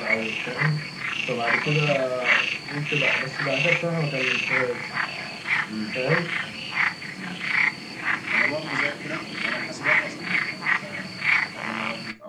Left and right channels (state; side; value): identical; both; correlation 1.00